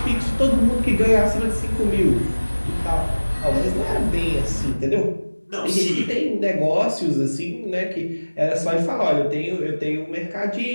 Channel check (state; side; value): inverted; both; correlation -1.00